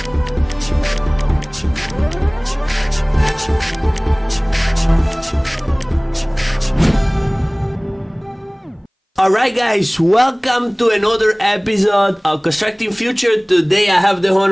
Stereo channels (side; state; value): both; identical; correlation 1.00